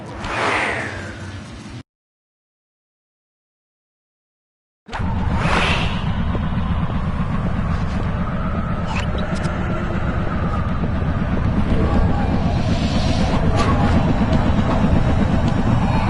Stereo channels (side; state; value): both; identical; correlation 1.00